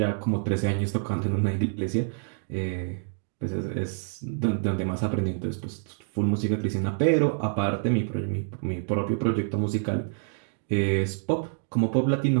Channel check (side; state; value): left; silent; digital silence